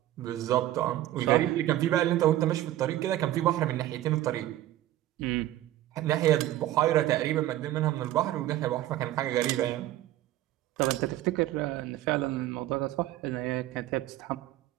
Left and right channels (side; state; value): left; quieter; 14.3 dB